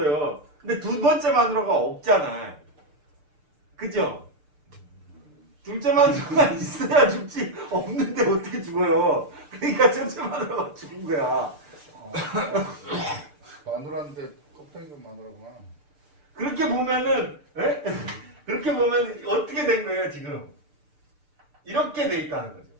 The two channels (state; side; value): late; left; 6.7 ms